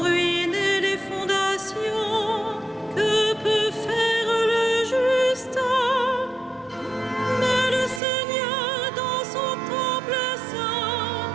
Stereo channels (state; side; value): drops out; left; at 8.0 s